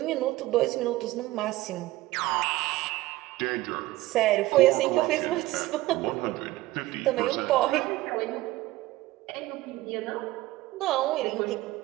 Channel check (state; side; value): quieter; left; 18.0 dB